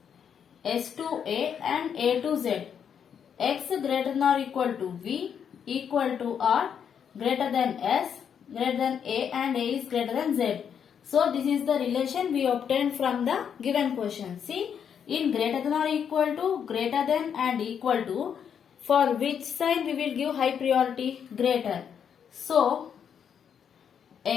S to A and A to Z. X greater than or equal to V, equal to R, greater than S, greater than A and A is greater than Z. So this is the relation we obtained from the given question. See, in greater than or equal to, greater than and equal to, for which sign we will give high priority? Greater. So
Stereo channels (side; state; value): right; quieter; 7.8 dB